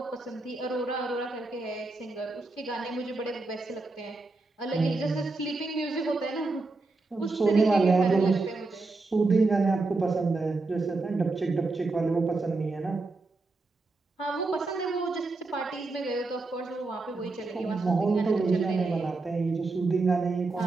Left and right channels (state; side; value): quieter; left; 3.5 dB